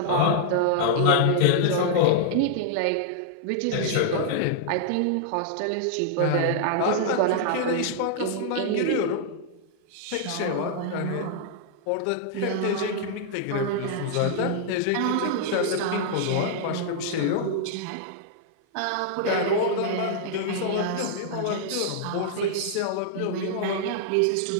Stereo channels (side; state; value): both; different; correlation -0.01